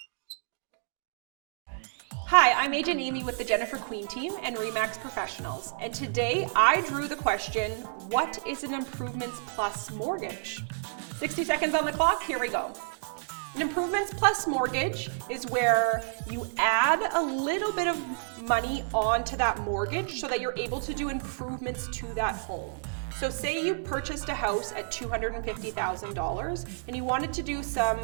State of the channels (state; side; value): silent; left; digital silence